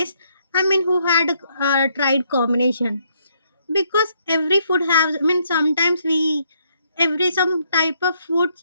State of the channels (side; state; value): both; inverted; correlation -0.73